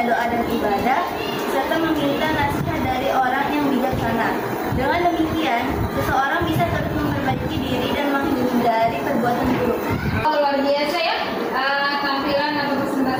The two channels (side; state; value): both; identical; correlation 1.00